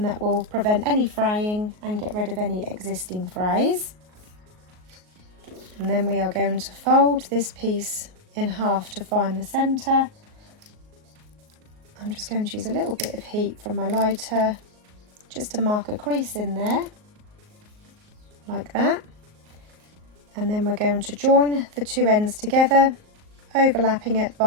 that will prevent any fraying and get rid of any existing frays. And then we are going to fold this piece in half to find the centre. I'm just going to use a little bit of heat from my lighter just to mark a crease in there, like that. And then we're going to join the 2 ends together, overlapping it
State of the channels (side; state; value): left; late; 38 ms